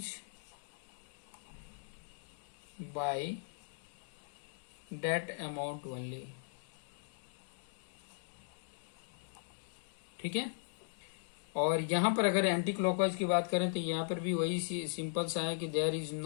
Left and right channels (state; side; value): silent; right; digital silence